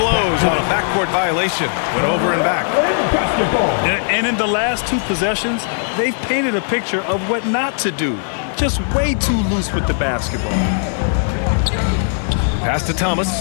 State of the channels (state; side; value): silent; right; digital silence